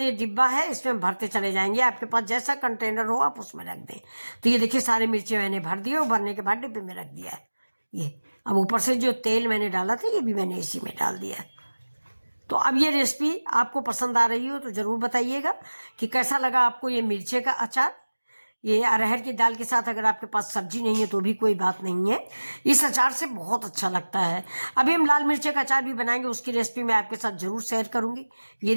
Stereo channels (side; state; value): both; inverted; correlation -1.00